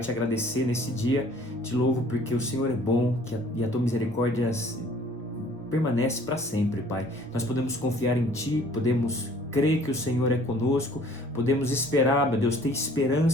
agradecer nesse dia. Te louvo porque o Senhor é bom e a tua misericórdia permanece para sempre, Pai. Nós podemos confiar em Ti, podemos crer que o Senhor é conosco, podemos esperar, meu Deus, ter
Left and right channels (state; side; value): normal; both; correlation 0.54